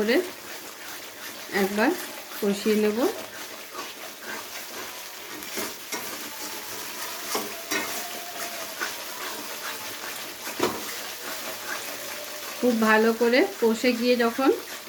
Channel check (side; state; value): both; identical; correlation 1.00